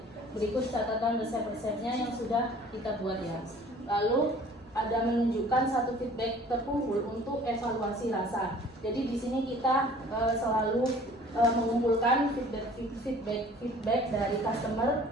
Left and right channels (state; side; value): normal; both; correlation 0.50